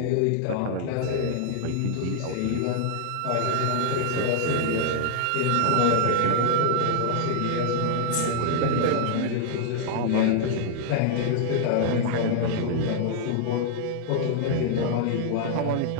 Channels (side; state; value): both; different; correlation 0.00